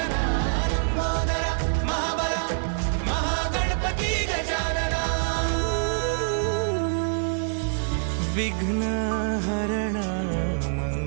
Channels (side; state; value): left; silent; 61 dB below the other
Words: लंबोदर महाबला महागणपती गजानना विघ्न हरण